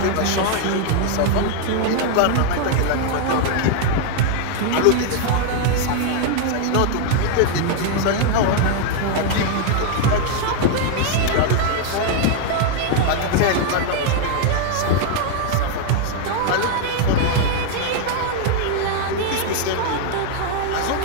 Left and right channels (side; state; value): both; different; correlation 0.00